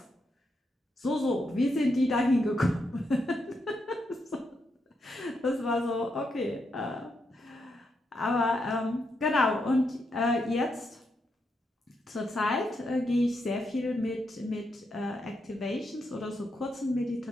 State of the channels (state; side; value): normal; both; correlation 0.82